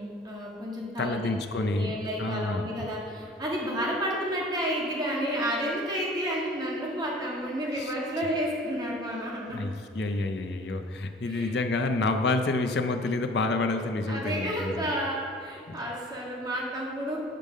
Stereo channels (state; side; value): normal; both; correlation 0.47